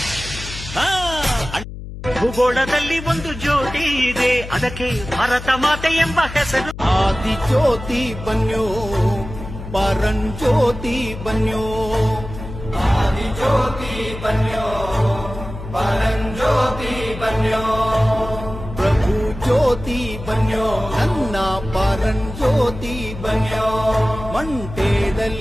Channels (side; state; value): left; noise; hum, 11 dB below the sound